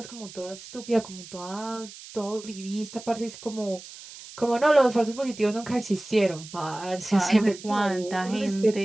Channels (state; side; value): noise; right; hiss, 16 dB below the sound